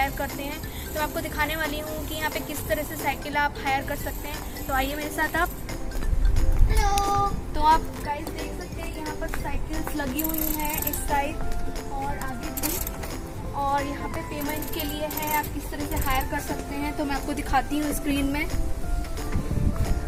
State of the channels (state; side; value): identical; both; correlation 1.00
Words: करते हैं। तो आपको दिखाने वाली हूँ कि यहाँ पे किस तरह से साइकिल आप हायर कर सकते हैं। तो आइए मेरे साथ आप। हेलो, तो आप गाइस देख सकते हैं यहाँ पर साइकिल्स लगी हुई हैं इस साइड और आगे भी, और यहाँ पे पेमेंट के लिए है आप किस तरह से हायर कर सकते हैं। तो मैं आपको दिखाती हूँ स्क्रीन में।